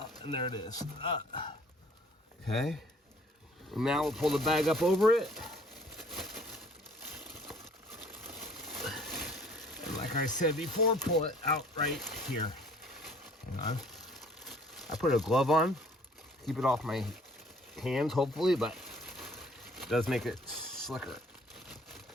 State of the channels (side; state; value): both; normal; correlation 0.55